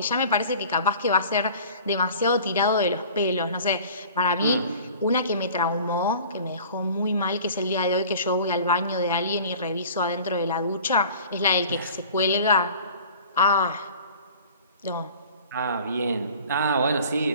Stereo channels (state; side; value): inverted; both; correlation -0.45